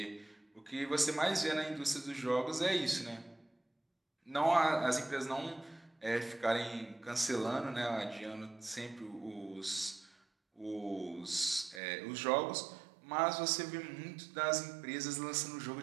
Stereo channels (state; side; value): drops out; left; at 11.8 s